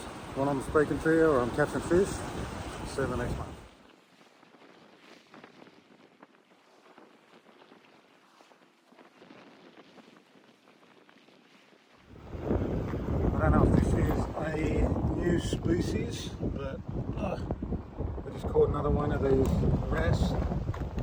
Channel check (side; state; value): both; identical; correlation 1.00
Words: When I'm speaking to you or I'm catching fish, see you in the next one. I don't know if this is a new species, but I just caught another one of these wrasse.